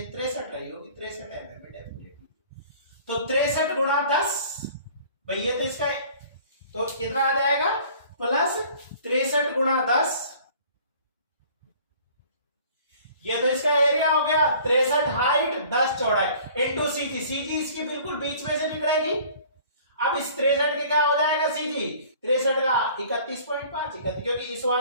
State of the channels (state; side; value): inverted; both; correlation -0.50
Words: 63 रही होगी, 63 mm में डेफिनेटली, तो 63 गुणा 10 भाई, ये तो इसका तो कितना आ जाएगा, प्लस 63 गुणा 10, ये तो इसका एरिया हो गया 63 हाइट 10 चौड़ाई इंटू सीजी, सीजी इसकी बिल्कुल बीच में से निकलेगी, अब इस 63 के क्या हो जाएगा सीजी, 63 का 31.5, क्योंकि इस